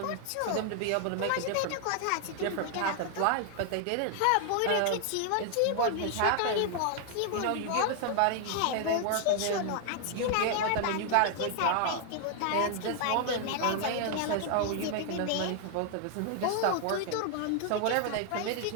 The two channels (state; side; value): different; both; correlation 0.00